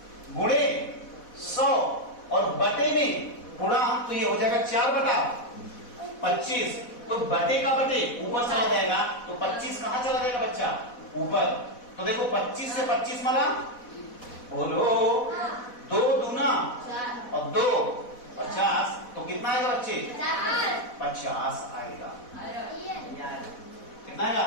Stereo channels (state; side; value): late; right; 4.1 ms